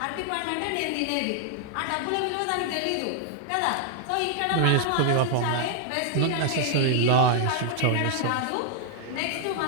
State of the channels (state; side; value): different; both; correlation 0.00